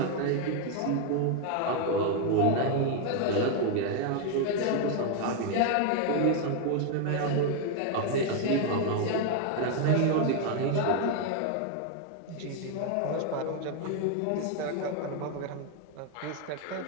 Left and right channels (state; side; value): different; both; correlation 0.01